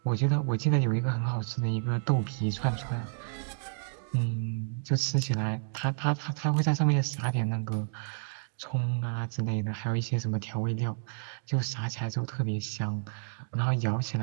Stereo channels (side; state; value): left; silent; digital silence